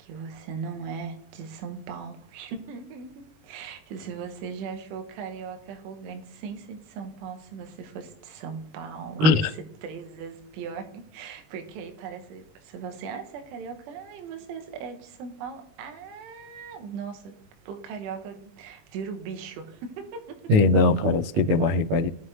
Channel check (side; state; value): left; late; 19 ms